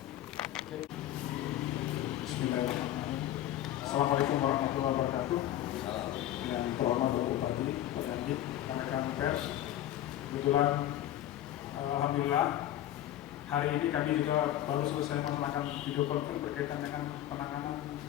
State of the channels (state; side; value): quieter; right; 12.8 dB